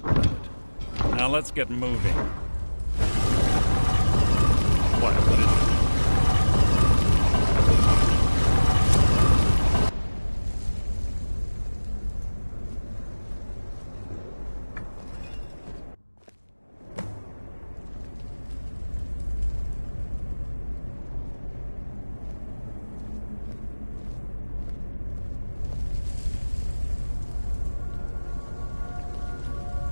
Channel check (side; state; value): both; inverted; correlation -1.00